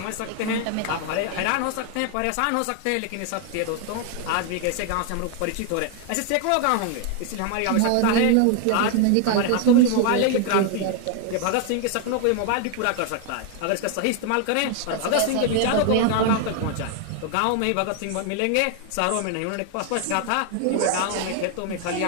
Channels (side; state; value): both; different; correlation 0.01